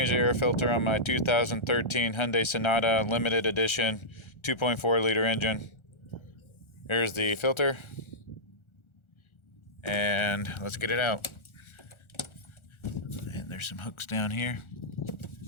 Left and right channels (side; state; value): right; late; 1.4 ms